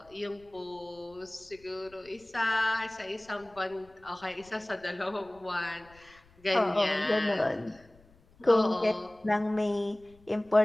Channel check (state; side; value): noise; left; rumble, 28 dB below the sound